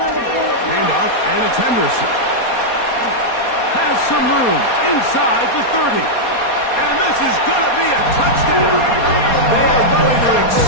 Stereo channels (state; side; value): late; right; 4.2 ms